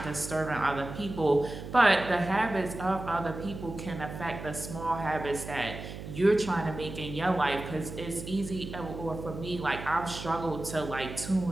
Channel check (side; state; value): right; noise; hum, 10 dB below the sound